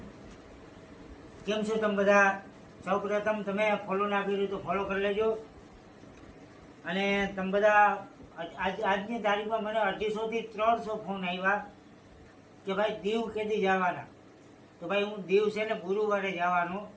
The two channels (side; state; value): both; identical; correlation 1.00